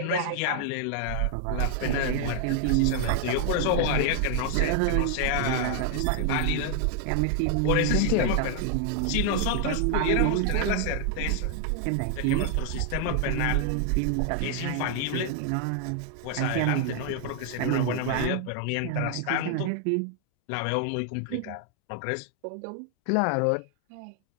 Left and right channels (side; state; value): both; different; correlation 0.00